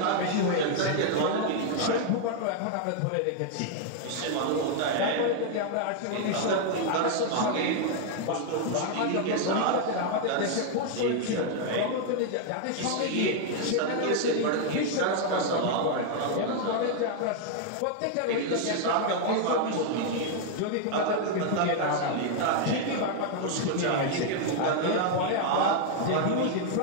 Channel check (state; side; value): different; both; correlation 0.00